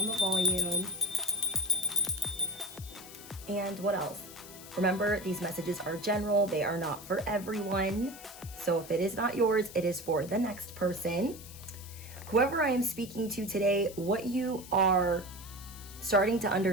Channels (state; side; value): noise; left; hiss, 16 dB below the sound